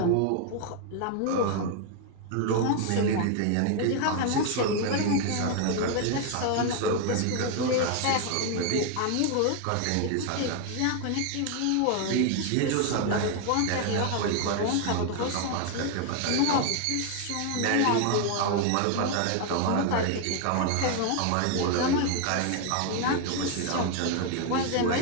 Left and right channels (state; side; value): different; both; correlation 0.01